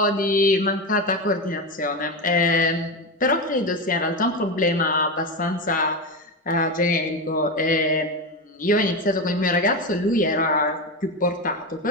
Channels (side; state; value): both; normal; correlation 0.16